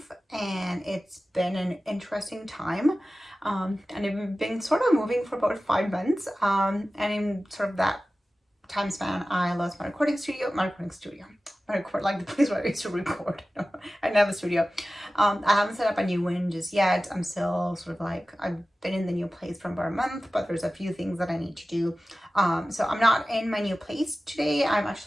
and it's been an interesting time. And I've been sort of moving for about 5 months. And in sort of that time span, I lost my recording studio. I record like the place where I used to record. I didn't have a studio. I haven't set up a new one just yet. I'm still sort of like, I've been in the new place for about a month, but there's a few things that I need to do. So I'm not in my new place today. I'm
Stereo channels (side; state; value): both; normal; correlation 0.95